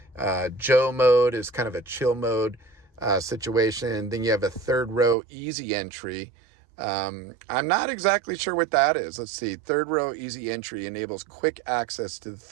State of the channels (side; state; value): left; drops out; at 5.2 s